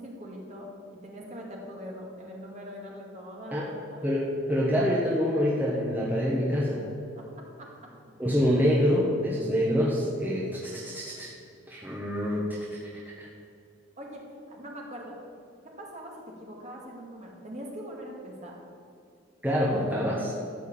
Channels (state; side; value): normal; both; correlation 0.67